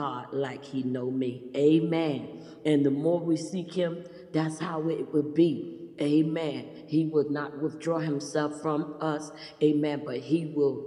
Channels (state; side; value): identical; both; correlation 1.00